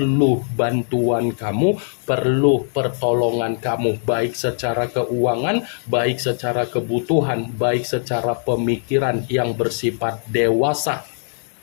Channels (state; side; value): silent; right; 56 dB below the other